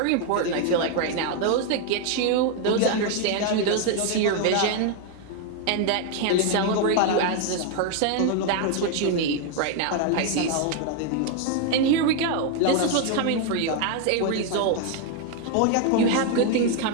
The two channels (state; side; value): different; both; correlation 0.01